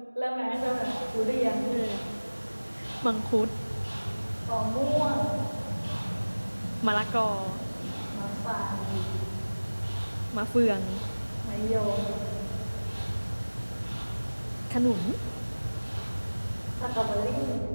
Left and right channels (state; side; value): inverted; both; correlation -1.00